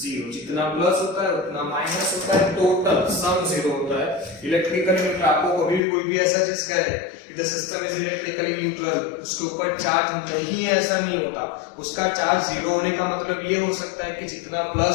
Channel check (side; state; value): right; drops out; at 5.8 s